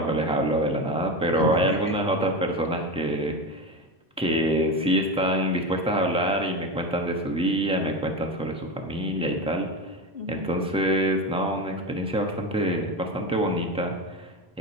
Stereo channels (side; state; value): both; normal; correlation 0.21